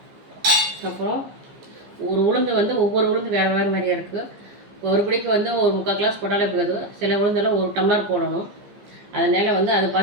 அப்புறம் ஒரு உளுந்து வந்து ஒவ்வொரு உளுந்து வேறு வேறு மாதிரியாக இருக்குது. ஒரு பிடிக்கு வந்து ஒரு 3/4 கிளாஸ் போட்டாலே போதும். சில உளுந்தெல்லாம் 1 டம்ளர் போடணும். அதனால் வந்து அதை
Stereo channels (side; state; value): left; late; 15 ms